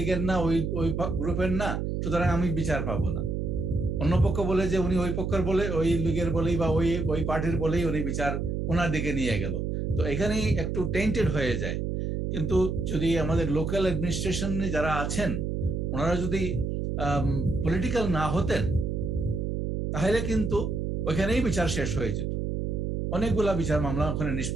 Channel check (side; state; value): right; noise; hum, 1 dB below the sound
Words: না, ওই গ্রুপের না, সুতরাং আমি বিচার পাবো না। অন্য পক্ষ বলে যে উনি ওই পক্ষের বলে, ওই লীগের বলেই বা ওই পার্টির বলেই উনি বিচার ওনার দিকে নিয়ে গেল। তো এখানেই একটু টেন্টেড হয়ে যায়। কিন্তু যদি আমাদের লোকাল অ্যাডমিনিস্ট্রেশন যারা আছেন, ওনারা যদি পলিটিক্যাল না হতেন, তাহলে কিন্তু ওইখানেই বিচার শেষ হয়ে যেত, অনেকগুলা বিচার মামলা ওখানে